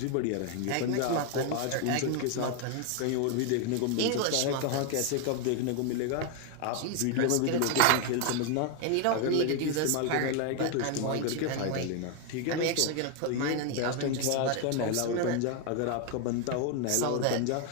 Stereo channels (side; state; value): both; different; correlation 0.01